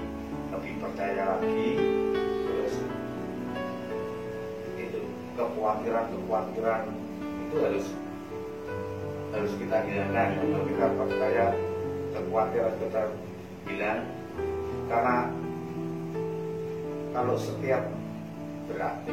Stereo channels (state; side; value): identical; both; correlation 1.00